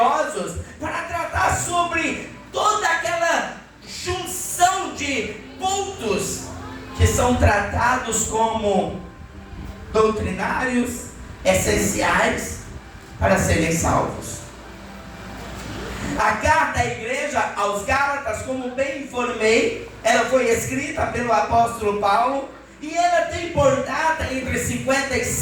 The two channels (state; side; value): identical; both; correlation 1.00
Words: para tratar sobre toda aquela junção de pontos que são tratados como doutrinários, essenciais para serem salvos. A carta à igreja aos Gálatas, como bem informei, ela foi escrita pelo apóstolo Paulo e ela tem por data entre